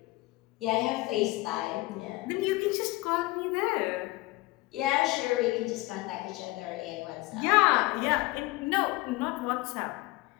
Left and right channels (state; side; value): quieter; right; 20.7 dB